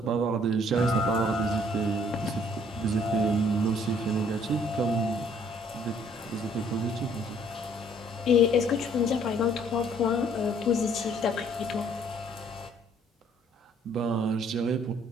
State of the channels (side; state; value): both; normal; correlation 0.61